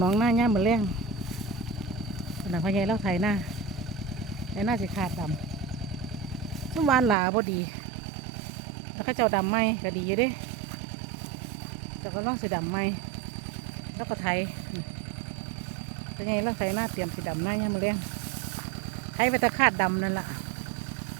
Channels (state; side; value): drops out; left; at 7.2 s